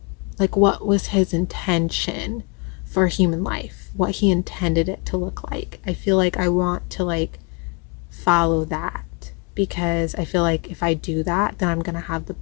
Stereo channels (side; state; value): right; quieter; 32.0 dB